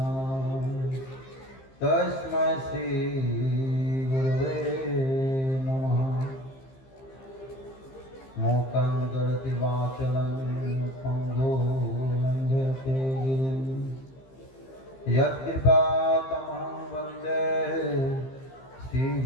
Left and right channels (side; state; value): right; late; 15 ms